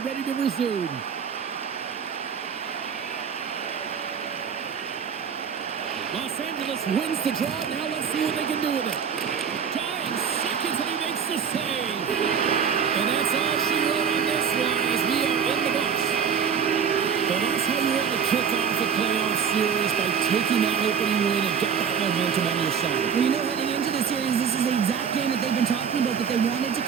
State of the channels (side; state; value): left; quieter; 7.0 dB